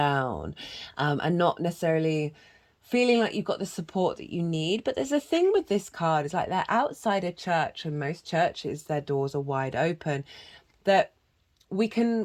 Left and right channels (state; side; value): identical; both; correlation 1.00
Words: not necessarily feeling like you've got the support that you need. But there's a thing with this card, it's they're outside a church, and most churches, their doors are wide open, that we